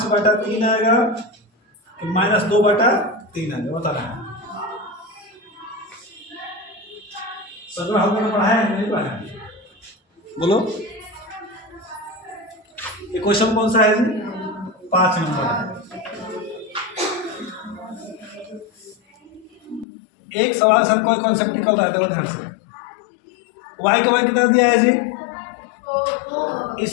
आएगा, -2/3 आएगा, बता रहा है। सर हमने पढ़ाया है नहीं पढ़ाया, बोलो ये क्वेश्चन कौन सा है जी, 5 नंबर। एक सवाल सर कोई कॉन्सेप्ट निकल रहा है, देखो ध्यान से, y का मान कितना दिया है जी, इस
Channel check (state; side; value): drops out; right; at 19.9 s